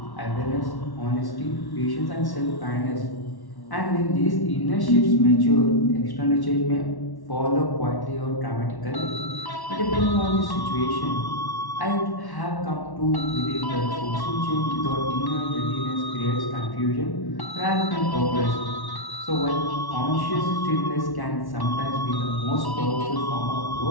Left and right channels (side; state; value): right; late; 1.1 ms